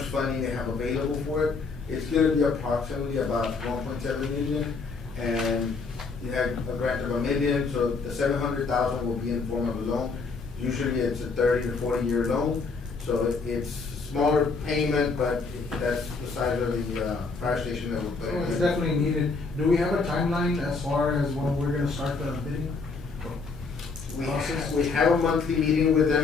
funding they have available for it. It's gonna be approximately about 1.7 million, and you have a grant of $1 million, so the 700,000 will be in form of a loan. Usually it's a 30 to 40-year loan, so it's smaller payment, but that's the size of the, fire station that we're putting in. It's definitely needed. Do we have a timeline as far as when we're gonna start the bidding? We have a monthly meeting with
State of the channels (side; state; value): right; quieter; 4.4 dB